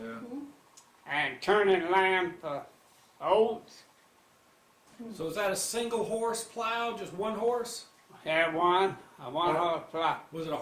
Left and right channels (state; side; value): identical; both; correlation 1.00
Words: and turning land for oats. So is that a single horse plow, just one horse? I had a one horse plow. Was it a